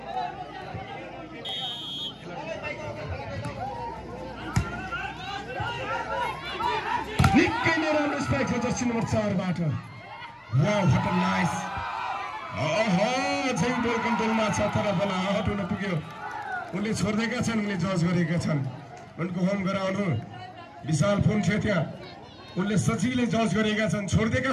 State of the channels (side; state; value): both; identical; correlation 1.00